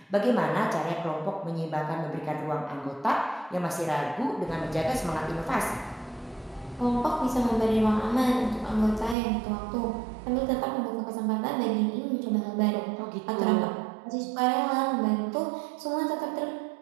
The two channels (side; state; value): left; drops out; at 9.2 s